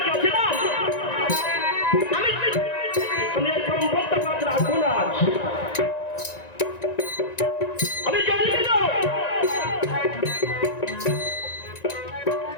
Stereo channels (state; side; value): late; right; 1.9 ms